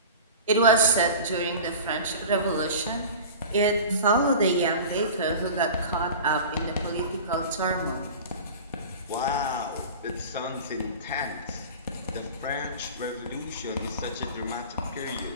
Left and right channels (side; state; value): both; inverted; correlation -0.36